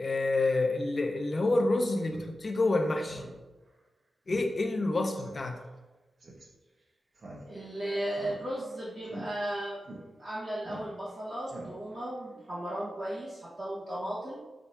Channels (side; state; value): both; normal; correlation 0.93